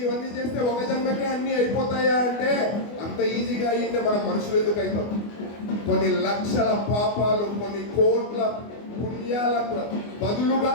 ఇవన్నీ చేస్తే ఒక జన్మకే అన్ని అయిపోతాయా అంటే, అంత ఈజీగా అయ్యింటే మనం మనుషులు ఎందుకు అవుతాం? కొన్ని లక్షల పాపాలు, కొన్ని కోట్ల పుణ్యాలకు బదులుగా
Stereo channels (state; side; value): late; right; 24 ms